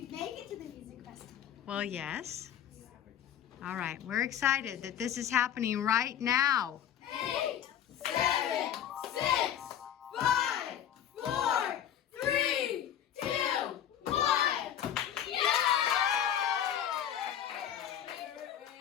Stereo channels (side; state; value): right; quieter; 10.1 dB